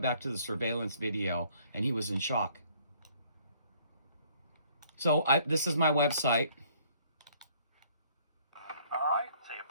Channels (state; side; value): inverted; both; correlation -0.61